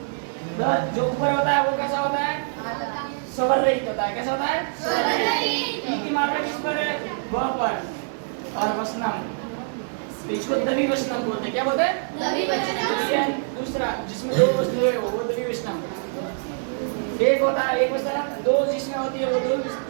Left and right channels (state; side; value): silent; left; digital silence